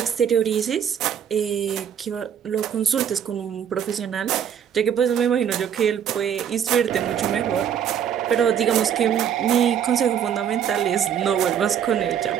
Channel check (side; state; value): left; quieter; 8.7 dB